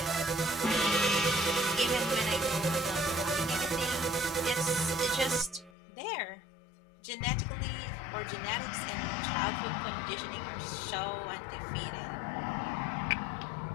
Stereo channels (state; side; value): drops out; right; at 5.7 s